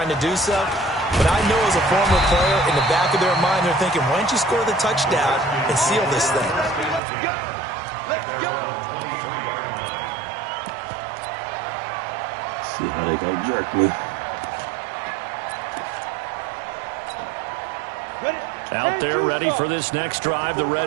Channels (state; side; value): drops out; left; at 7.0 s